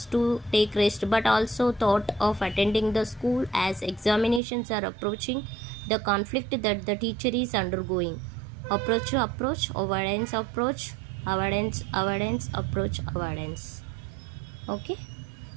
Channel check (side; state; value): left; drops out; at 4.4 s